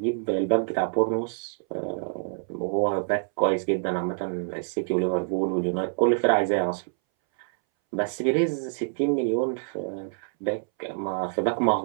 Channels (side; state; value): left; silent; 61 dB below the other